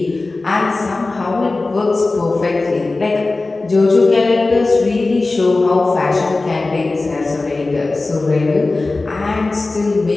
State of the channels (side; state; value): right; quieter; 3.4 dB